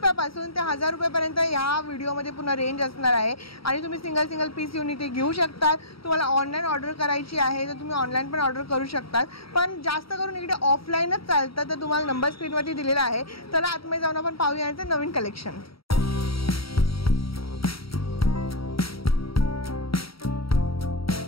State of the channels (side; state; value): right; late; 0.75 ms